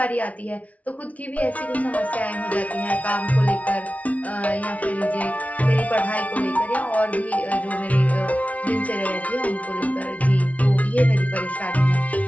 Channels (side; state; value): right; late; 0.068 ms